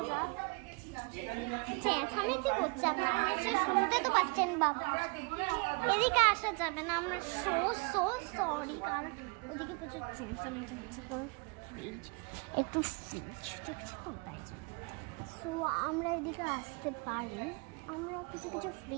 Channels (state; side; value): quieter; left; 32.2 dB